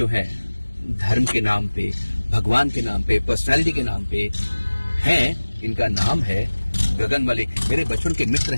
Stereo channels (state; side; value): inverted; both; correlation -1.00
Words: हैं धर्म के नाम पे, भगवान के नाम पे, पर्सनालिटी के नाम पे हैं, इनका नाम है गगन मलिक। मेरे बचपन के मित्र